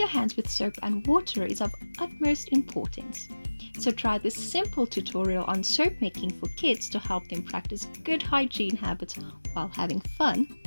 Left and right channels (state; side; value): inverted; both; correlation -1.00